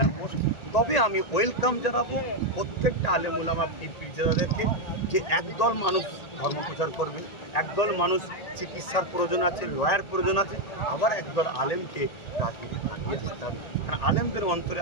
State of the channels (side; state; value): right; late; 1.8 ms